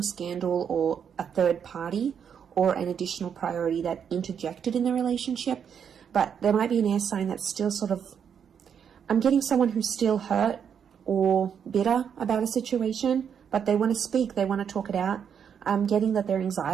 scandal, or a third party, or an additional priority that interjected in the relationship. But there might be an air sign that's still sort of... I'm getting someone who's still hurt or bitter about a situation, but they want to speak. They want to talk it out. I'm getting that their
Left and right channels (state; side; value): quieter; left; 7.7 dB